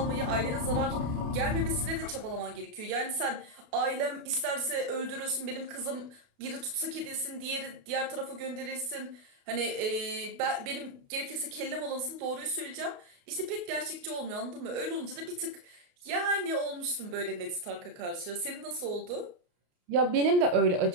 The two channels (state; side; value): late; left; 28 ms